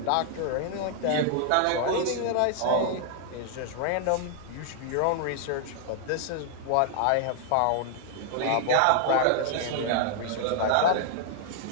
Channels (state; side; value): different; both; correlation 0.00